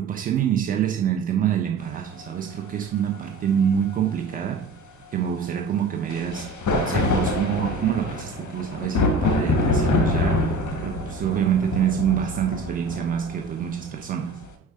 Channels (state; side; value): quieter; left; 3.5 dB